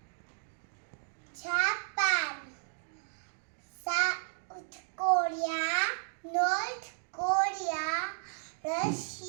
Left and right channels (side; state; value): left; silent; digital silence